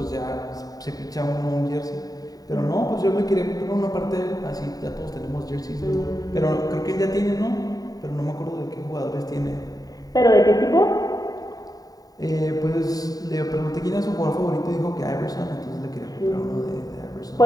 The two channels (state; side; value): late; right; 0.18 ms